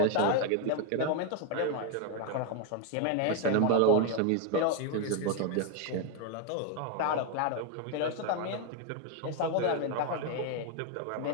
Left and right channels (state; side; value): different; both; correlation 0.01